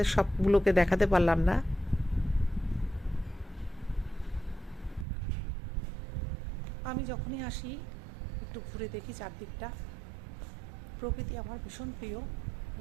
সবগুলোকে দেখাতে পারলাম না। আমি যখনই আসি একটু ঘুরে দেখি চারদিকটা। প্রকৃতি আমার ভীষণ প্রিয়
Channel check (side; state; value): left; drops out; at 5.1 s